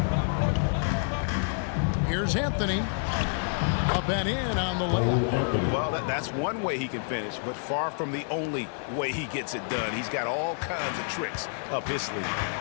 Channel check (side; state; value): right; silent; 57 dB below the other